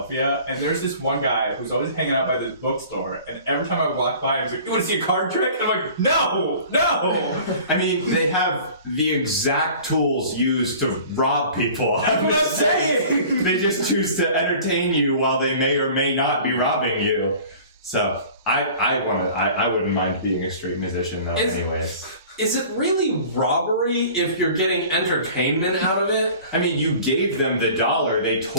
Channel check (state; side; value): inverted; both; correlation -0.45